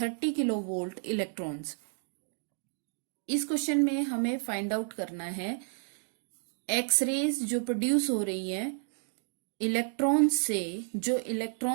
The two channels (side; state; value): left; silent; digital silence